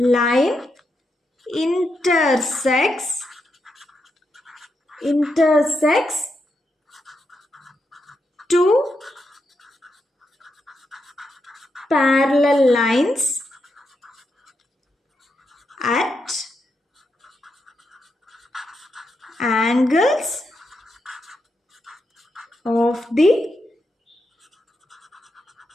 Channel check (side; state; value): both; normal; correlation 0.84